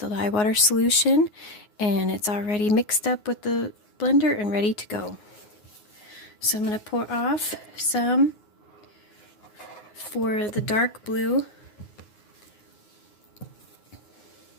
lye water solution, and it's already mixed up with the blender and ready to go. So I'm going to pour off some for the dark blue.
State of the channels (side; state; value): right; late; 9.5 ms